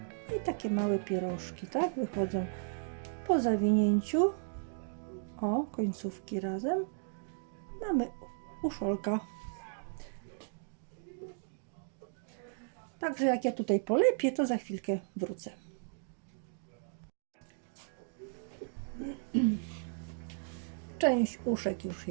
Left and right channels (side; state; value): left; silent; digital silence